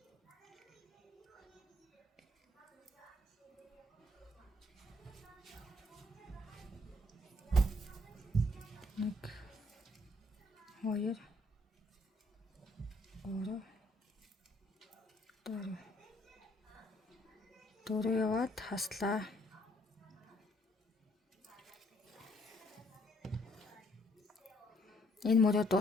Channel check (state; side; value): normal; both; correlation 0.67